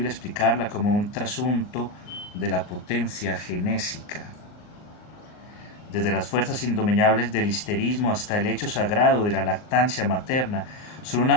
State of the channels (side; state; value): right; late; 39 ms